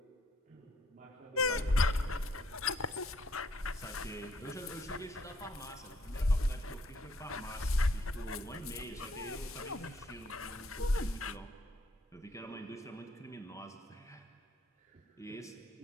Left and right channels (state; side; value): normal; both; correlation 0.69